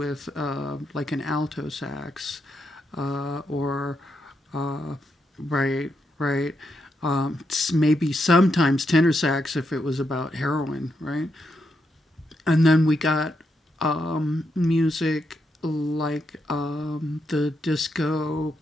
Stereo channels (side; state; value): both; normal; correlation 0.82